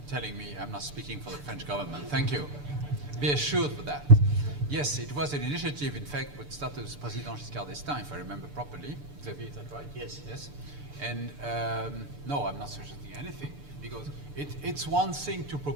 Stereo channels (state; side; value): late; left; 6.8 ms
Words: telling me I'm not speaking for the French government. Thank you. Be assured of that. Yes, it was an initiative, in fact, which started with President Giscard d'Estaing, if I remember properly. Xavier, is that right? Yes. Yes. And no, I'm not suggesting anything, because it's one thing to